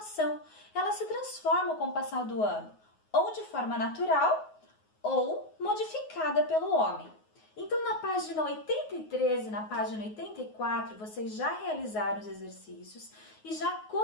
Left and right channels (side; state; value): right; late; 9.5 ms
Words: Ela se transforma com o passar do ano, ou de forma natural, ou modificada pelo homem. Então, na página 83 e na página 84, vocês já realizaram os exercícios e já